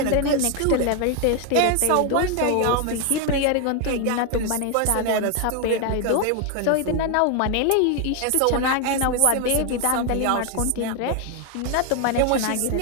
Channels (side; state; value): both; different; correlation 0.01